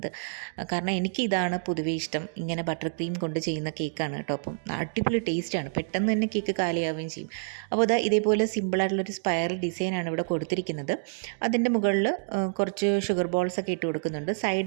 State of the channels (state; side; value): silent; left; digital silence